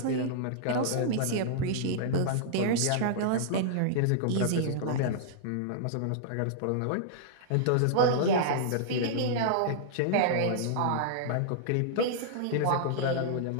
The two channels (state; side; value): different; both; correlation -0.02